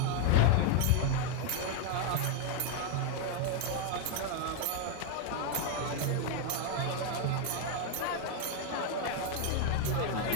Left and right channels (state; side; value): different; both; correlation 0.01